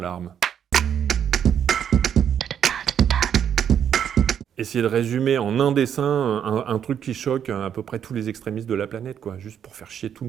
Essayer de résumer en un dessin un truc qui choque à peu près tous les extrémistes de la planète, quoi, juste pour faire chier tout le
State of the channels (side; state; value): left; quieter; 8.7 dB